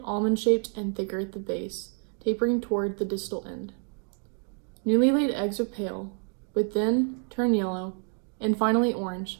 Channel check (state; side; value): quieter; left; 39.5 dB